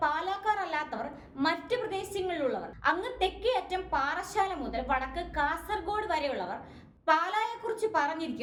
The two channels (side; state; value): both; identical; correlation 1.00